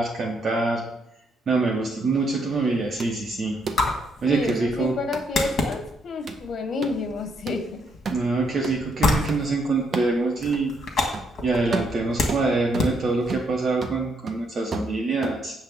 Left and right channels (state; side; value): normal; both; correlation 0.74